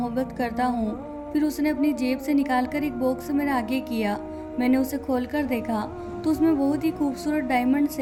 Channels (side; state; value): both; identical; correlation 1.00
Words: करता हूँ। फिर उसने अपनी जेब से निकालकर एक बॉक्स मेरे आगे किया। मैंने उसे खोलकर देखा तो उसमें बहुत ही खूबसूरत डायमंड